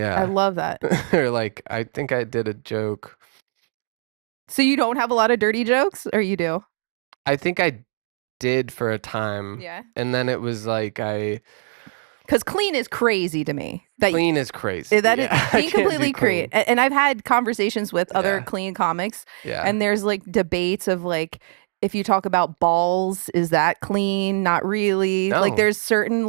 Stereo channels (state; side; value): silent; left; 62 dB below the other